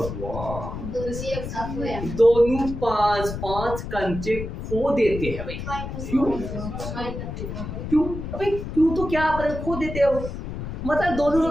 दोनों 5-5 कंचे खो देते हैं भाई। क्यों भाई? क्यों तो क्या खो देते हो, मतलब दोनों के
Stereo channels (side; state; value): left; noise; rumble, 7 dB below the sound